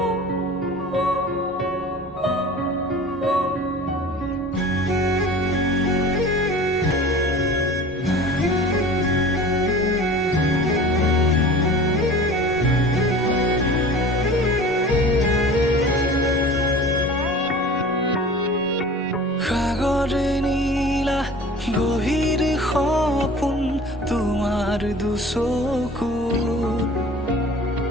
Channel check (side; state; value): both; normal; correlation 0.41